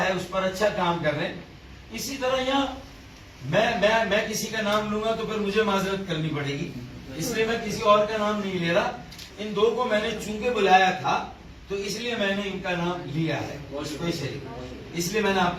ہے اس پر اچھا کام کر رہے ہیں. اسی طرح یہاں میں کسی کا نام لوں گا تو پھر مجھے معذرت کرنی پڑے گی، اس لیے میں کسی اور کا نام نہیں لے رہا. ان دو کو میں نے چونکہ بلایا تھا تو اس لیے میں نے ان کا نام لیا ہے اسپیشلی، اس لیے میں نے آپ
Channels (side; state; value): both; identical; correlation 1.00